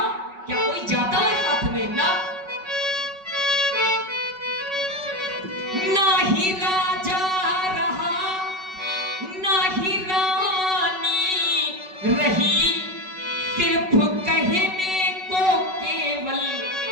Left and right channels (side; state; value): left; late; 5.3 ms